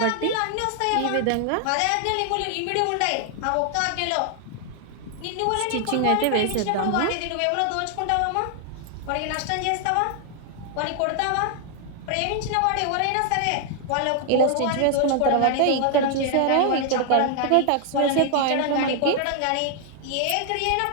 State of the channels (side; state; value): both; different; correlation 0.00